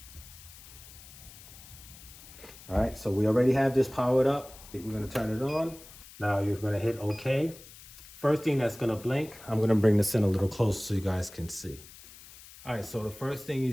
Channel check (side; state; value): left; noise; hiss, 19 dB below the sound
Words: All right, so we already have this powered up. We're gonna turn it on. Now you're gonna hit OK. First thing that's gonna blink, I'm gonna bring this in a little closer so you guys can see. All right, so the first thing you